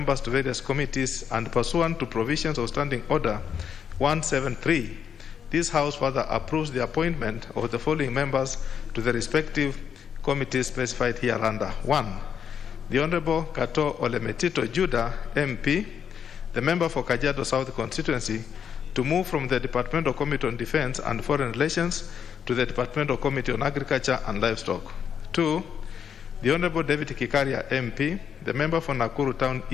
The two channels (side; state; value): right; quieter; 7.8 dB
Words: to various committees and pursuant to provisions of Standing Order 173, this House further approves the appointment of the following members to the respective committees specified hereunder. 1. The Honourable Kato Olemetito Judah, MP, the member for Kajiado South Constituency, to move from the Departmental Committee on Defence and Foreign Relations to the Departmental Committee on Agriculture and Livestock. 2. The Honourable David Kikaria, MP, the member for Nakuru Town